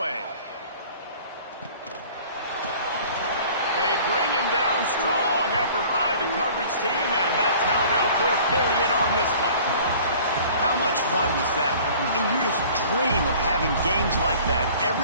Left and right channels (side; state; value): both; inverted; correlation -0.48